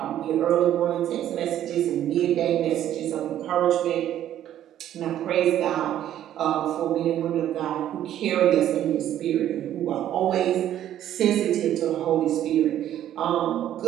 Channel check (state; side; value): quieter; left; 11.5 dB